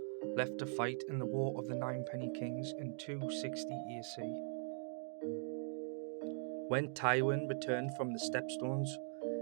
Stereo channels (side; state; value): left; silent; digital silence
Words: left to fight in the War of the Ninepenny Kings in 260 AC. When Tywin returned from the Stepstones,